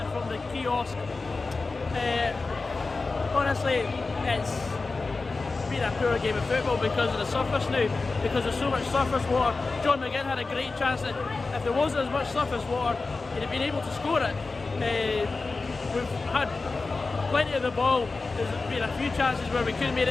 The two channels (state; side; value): quieter; right; 3.8 dB